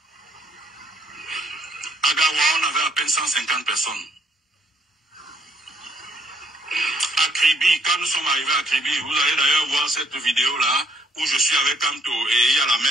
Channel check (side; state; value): both; normal; correlation 0.68